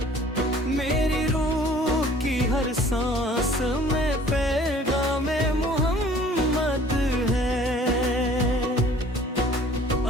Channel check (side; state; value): both; normal; correlation 0.52